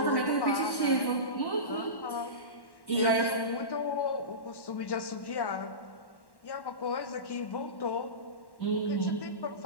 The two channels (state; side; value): late; right; 1.1 ms